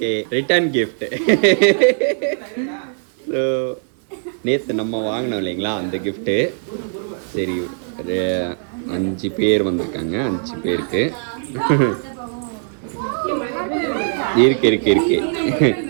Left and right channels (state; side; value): silent; left; digital silence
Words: return gift. So நேற்று நம்ம வாங்கினோம் இல்லைங்களா அந்த கிஃப்ட்டு. சரி, 5 பேர் வந்திருக்காங்க. 5 பேருக்கு இருக்கு